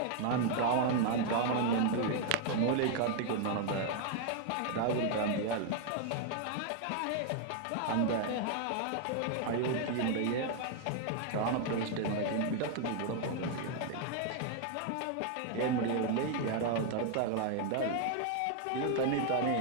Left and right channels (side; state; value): both; different; correlation 0.00